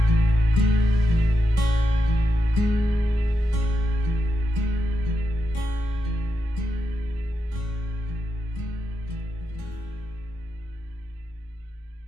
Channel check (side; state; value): both; normal; correlation 0.84